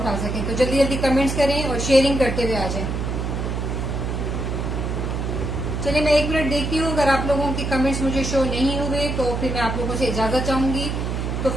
सकें। तो जल्दी जल्दी कमेंट्स करें और शेयरिंग करते हुए आ जाएं। चलिए मैं 1 मिनट देखती हूँ, अगर आप लोगों के कमेंट्स मुझे शो नहीं हुए तो फिर मैं आप लोगों से इजाजत चाहूंगी। तो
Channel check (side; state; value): right; noise; hum, 2 dB below the sound